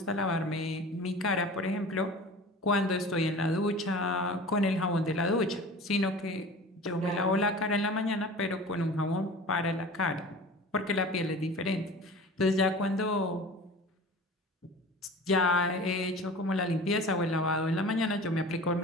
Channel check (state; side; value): normal; both; correlation 0.39